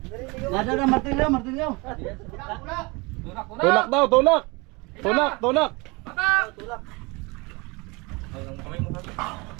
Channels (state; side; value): quieter; left; 26.5 dB